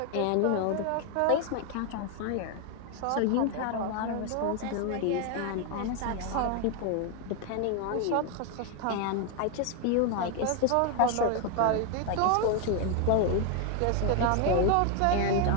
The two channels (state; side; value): different; both; correlation 0.01